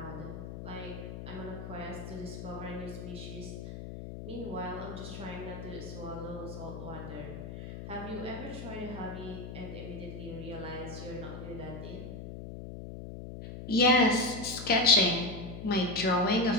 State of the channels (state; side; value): noise; left; hum, 9 dB below the sound